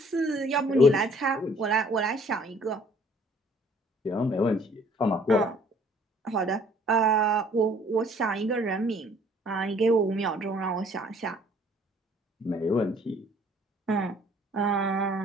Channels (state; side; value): normal; both; correlation 0.58